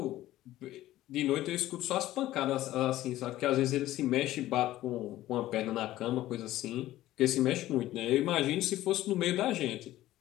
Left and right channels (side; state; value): right; quieter; 15.0 dB